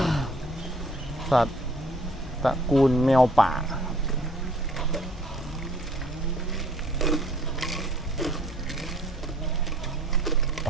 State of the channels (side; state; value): both; normal; correlation 0.57